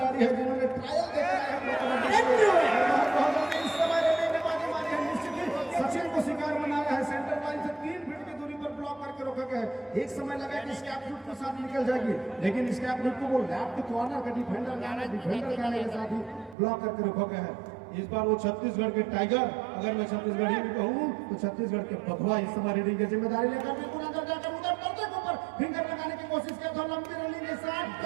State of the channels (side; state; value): left; drops out; at 16.6 s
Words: हैं जिन्होंने ट्रायल देखा है प्रो कबड्डी में। इस समय निश्चित ही सचिन को शिकार बनाया है। सेंटर लाइन से 3 फीट की दूरी पर ब्लॉक करके रोका गया है। एक समय लगा कि स्कैप फुट के साथ निकल जाएगी, लेकिन स्कैप फुट को वो लेफ्ट कॉर्नर का डिफेंडर गाने के साथ ही ब्लॉक करके रोका गया है। इस बार वो छत्तीसगढ़ के टाइगर, अगर मैं छत्तीसगढ़ी भी कहूँ तो छत्तीसगढ़ के बघवा इस समय रीडिंग की जिम्मेदारी लेकर बिल्कुल अंदर जाकर उधर पर्दे के ऊपर फिंगर लगाने की कोशिश किया था। लंबी रनिंग के साथ